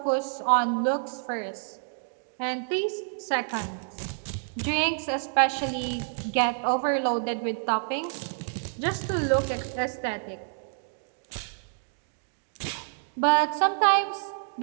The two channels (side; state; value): left; silent; digital silence